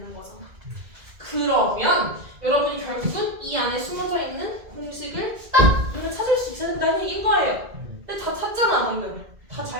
거잖아. 그러면 여러분이 결국은 이 안에 숨어져 있는 공식을 딱 눈에 찾을 수 있어야 된다는 얘기인 거예요. 근데 다 찾잖아 방금. 다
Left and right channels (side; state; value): left; late; 2.1 ms